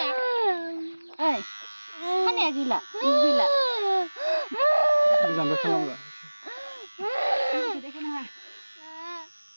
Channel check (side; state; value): both; inverted; correlation -1.00